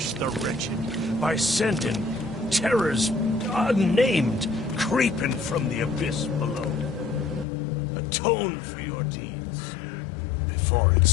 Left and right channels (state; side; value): drops out; right; at 7.5 s